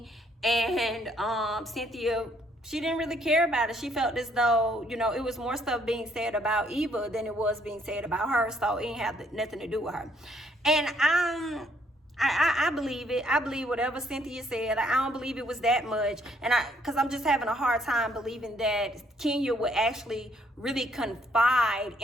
And Cynthia, she didn't really care about it. She felt as though, you know, it was more stuff being said about Eva than it was being said about her. So it didn't have nothing to do with her. And I believe it. I believe whatever Cynthia said. I don't believe it was that much. And because I'm just having a hard time believing that Kenya would actually really confide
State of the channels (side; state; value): both; normal; correlation 0.68